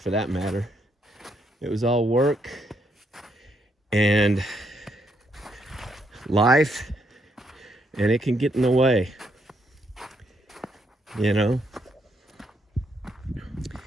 that matter. It was all work and life, and it can get in the way, you know.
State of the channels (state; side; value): normal; both; correlation 0.75